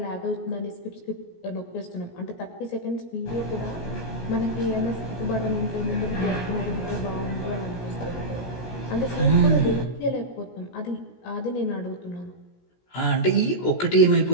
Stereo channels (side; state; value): right; late; 17 ms